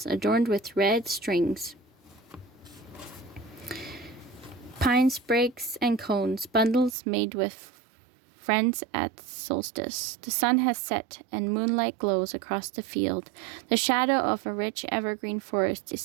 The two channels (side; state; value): left; drops out; at 7.0 s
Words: adorned with red strings. Pine sprigs and cones, bundles made with friends at solstice. The sun has set and moonlight glows across the field. The shadow of a rich evergreen forest is